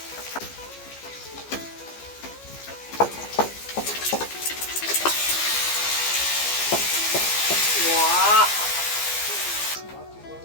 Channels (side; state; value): right; late; 15 ms